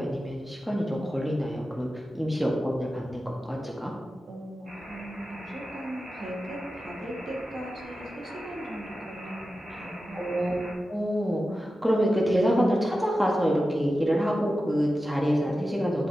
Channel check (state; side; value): normal; both; correlation 0.93